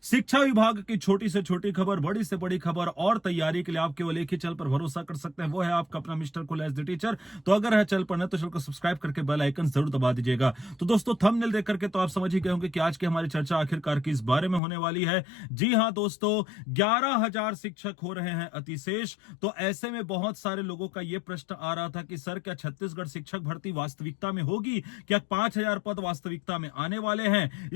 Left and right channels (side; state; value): right; drops out; at 14.6 s